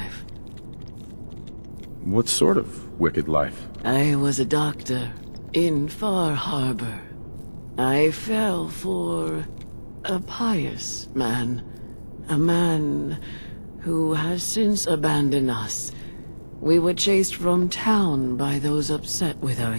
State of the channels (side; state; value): both; inverted; correlation -1.00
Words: What sort of wicked life? I was a doctor in Far Harbor. I fell for a pious man. A man who has since abandoned us. We were chased from town by those upset with our